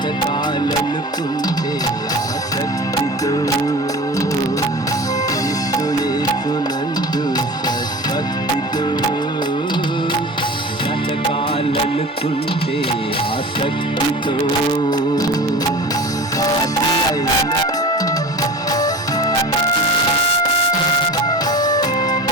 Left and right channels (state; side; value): normal; both; correlation 0.35